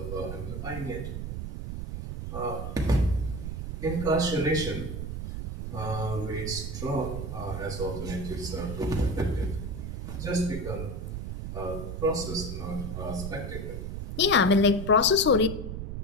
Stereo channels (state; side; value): noise; right; rumble, 5 dB below the sound